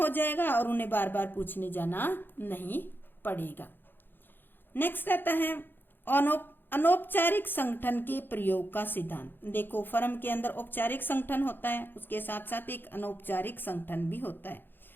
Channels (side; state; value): right; late; 0.097 ms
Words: जाएगा और उन्हें बार बार पूछने जाना नहीं पड़ेगा। नेक्स्ट आता है अनौपचारिक संगठन के प्रयोग का सिद्धांत। देखो फर्म के अंदर औपचारिक संगठन होता है, उसके साथ साथ एक अनौपचारिक संगठन भी होता है,